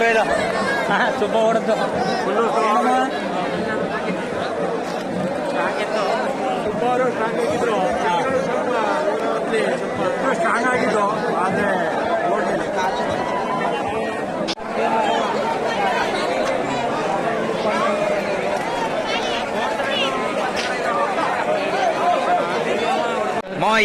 ಇದು. ಸುಬ್ಬ ಓಡದ್ದು ಸ್ಟ್ರಾಂಗ್ ಆಗಿದ್ದು ಆದರೆ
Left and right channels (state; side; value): identical; both; correlation 1.00